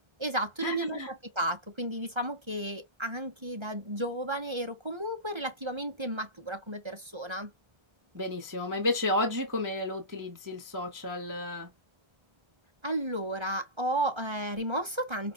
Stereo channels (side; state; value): left; late; 1.3 ms